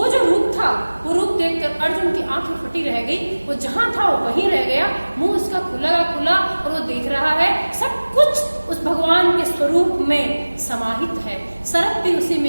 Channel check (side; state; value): both; inverted; correlation -1.00